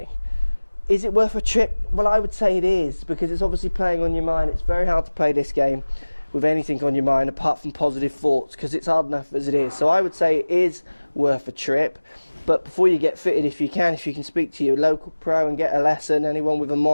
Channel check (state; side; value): inverted; both; correlation -1.00